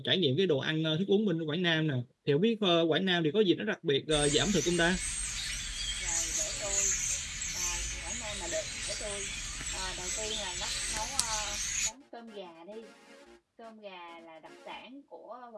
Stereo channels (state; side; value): identical; both; correlation 1.00